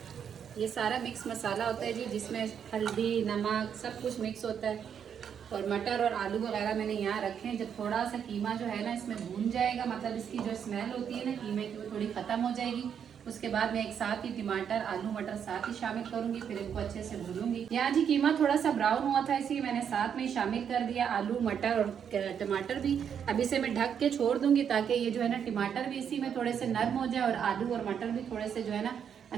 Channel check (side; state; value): left; quieter; 8.0 dB